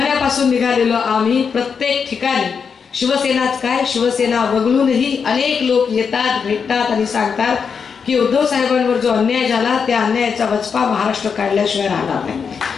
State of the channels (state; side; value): quieter; right; 6.2 dB